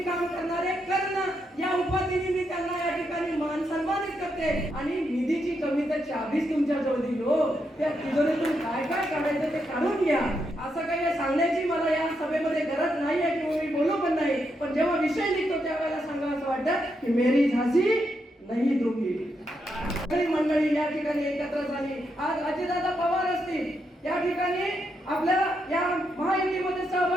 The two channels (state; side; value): normal; both; correlation 0.81